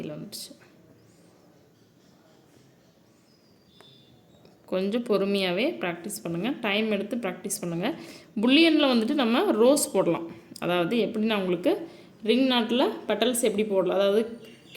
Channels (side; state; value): both; identical; correlation 1.00